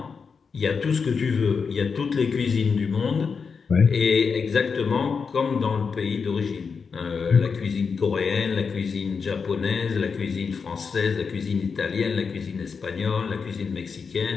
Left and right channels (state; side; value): quieter; right; 5.5 dB